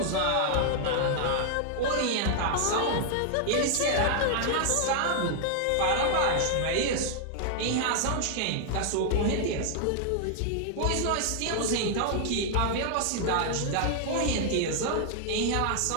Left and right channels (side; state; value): both; different; correlation 0.00